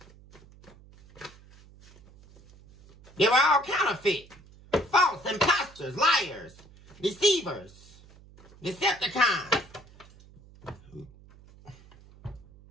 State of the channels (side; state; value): right; noise; hum, 24 dB below the sound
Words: They were all counterfeit. False, imposters, liars, deceivers, Decepticons.